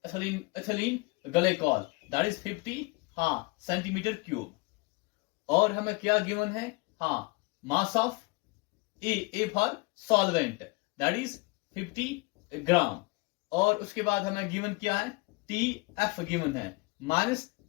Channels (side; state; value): right; quieter; 25.8 dB